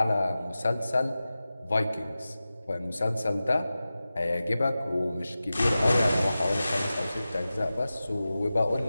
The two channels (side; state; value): both; inverted; correlation -0.95